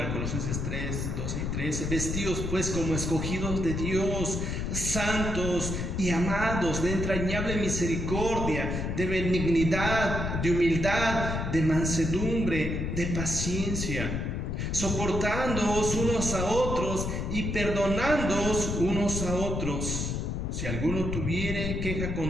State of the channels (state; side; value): noise; left; rumble, 2 dB below the sound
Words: Colosenses 3, 12 y 13, vestidos pues como escogidos de Dios, santos y amados, de entrañable misericordia, de benignidad, de humildad, de mansedumbre, de paciencia, soportándoos unos a otros y perdonándoos unos a otros. Si alguno tuviere queja